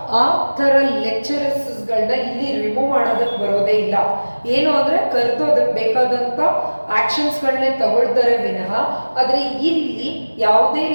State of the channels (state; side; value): inverted; both; correlation -1.00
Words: ಆ ಥರ ಲೆಕ್ಚರರ್ಸ್ಗಳನ್ನ ಇಲ್ಲಿ ರಿಮೂವ್ ಮಾಡೋದಕ್ಕೆ ಬರೋದೇ ಇಲ್ಲ. ಏನು ಅಂದರೆ ಕರೆದು ಅದಕ್ಕೆ ಬೇಕಾದಂಥ ಆ್ಯಕ್ಷನ್ಸ್ಗಳನ್ನೇ ತಗೊಳ್ತಾರೆ ವಿನಃ. ಆದರೆ ಇಲ್ಲಿ ಯಾವುದೇ